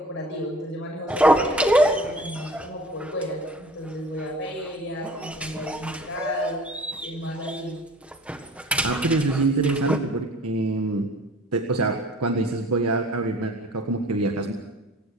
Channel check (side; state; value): both; normal; correlation 0.46